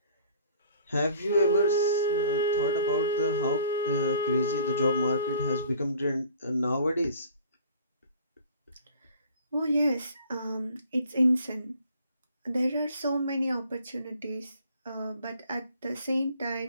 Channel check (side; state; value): both; inverted; correlation -0.51